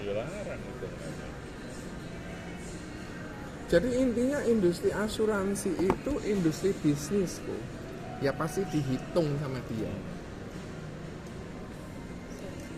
larang itu namanya. Jadi intinya industri asuransi itu industri bisnis kok. Ya pasti dihitung sama dia.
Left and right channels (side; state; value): both; identical; correlation 1.00